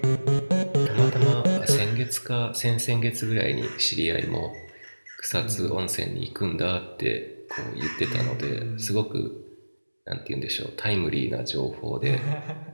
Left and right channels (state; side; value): inverted; both; correlation -1.00